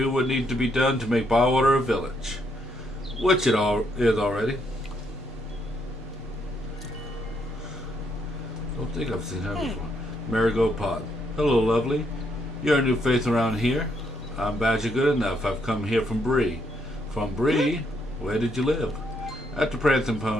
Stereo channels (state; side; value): normal; both; correlation 0.74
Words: what needs to be done to make Bywater a village. Which it all is already. Don't think I've seen her before. Marigold Pot. Hello, lovely. You're a new face around here. I'm Badger Good Enough. I've come here from Bree. From Bree? Where did you live? At the Prancing